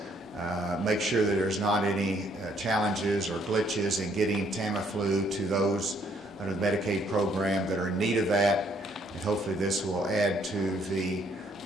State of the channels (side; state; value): both; normal; correlation 0.67